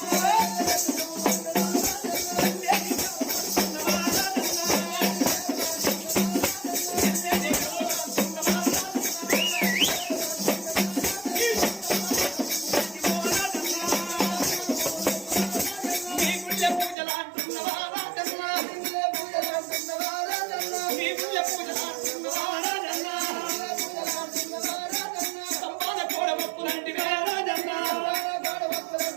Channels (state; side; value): drops out; left; at 16.9 s